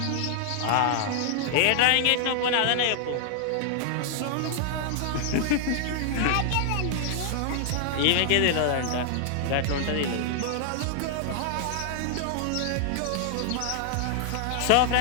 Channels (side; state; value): both; different; correlation 0.00